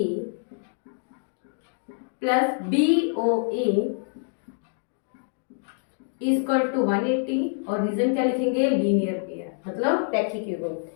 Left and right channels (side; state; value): right; silent; digital silence